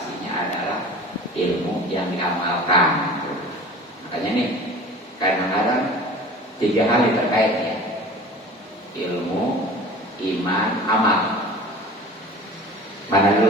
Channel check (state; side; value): normal; both; correlation 0.40